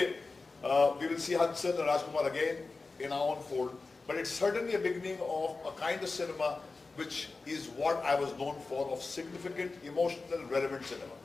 we will see Hansal and Rajkumar again in our own fold. But it's certainly a beginning of a kind of cinema which is what I was known for, of significant, emotional, relevant cinema.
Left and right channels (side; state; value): right; quieter; 3.8 dB